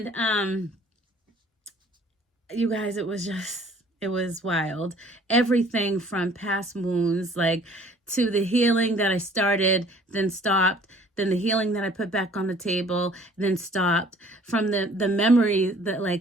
you guys, it was wild. Everything from past wounds, like to the healing that I started, then stopped, then the healing that I put back on the table, then stopped, from the memory that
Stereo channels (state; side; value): normal; both; correlation 0.54